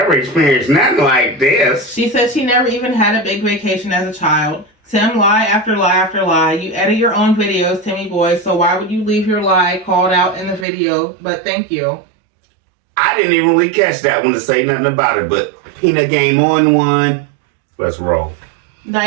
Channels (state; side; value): drops out; left; at 10.7 s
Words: experienced nothing like this. She said she never even had a big vacation as a child. Tim, lie after lie after lie. You edit your own videos, Timmy boy, so why would you leave your lie called out in the video? But thank you. I didn't even really catch that one to say nothing about it, but Peanut Game on one. Let's roll.